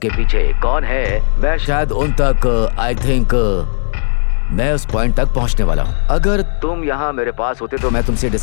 पीछे कौन है मैं शायद उन तक आई थिंक मैं उस पॉइंट तक पहुंचने वाला हूं। अगर तुम यहाँ मेरे पास होते तो मैं तुमसे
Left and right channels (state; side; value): silent; right; 64 dB below the other